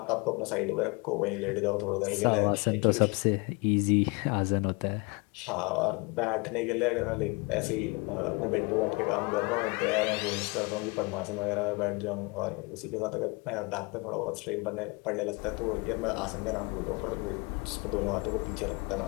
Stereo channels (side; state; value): right; quieter; 28.6 dB